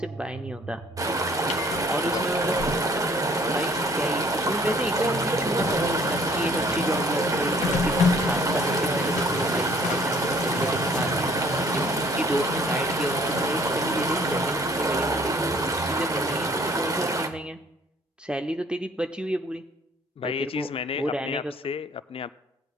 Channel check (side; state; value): both; normal; correlation 0.58